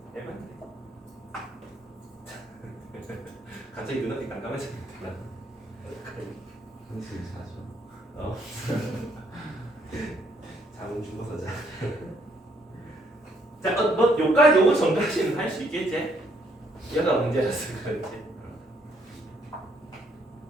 갑자기 눈앞이 깜깜해졌다. 한숨 자죠. 잠은 죽어서 자. 자, 뭐 요까지 요거 전까지는 할 수 있겠지? 얘가 문제라서 그렇지.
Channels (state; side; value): normal; both; correlation 0.69